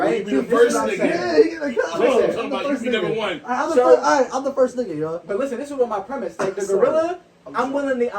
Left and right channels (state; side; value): identical; both; correlation 1.00